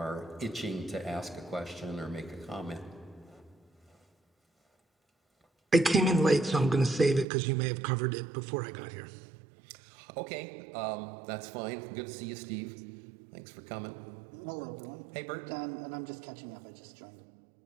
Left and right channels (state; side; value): drops out; left; at 7.2 s